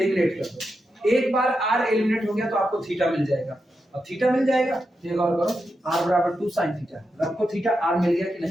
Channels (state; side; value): normal; both; correlation 0.87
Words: कर दो, एक बार r एलिमिनेट हो गया तो आपको थीटा मिल जाएगा, अब थीटा मिल जाएगा तो ये गौर करो r बराबर 2 sin थीटा, रखो थीटा r मिल गया कि